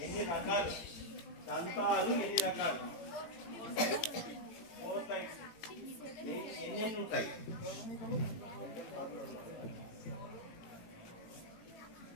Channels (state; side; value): late; right; 18 ms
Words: ఎన్ని రకాలు దంతాలు, ఎన్ని రకాలు? 4 టైప్స్. ఎన్ని ఉంటాయి?